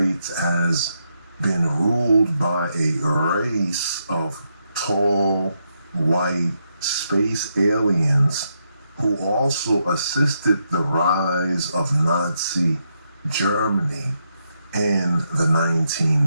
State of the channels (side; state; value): both; inverted; correlation -0.81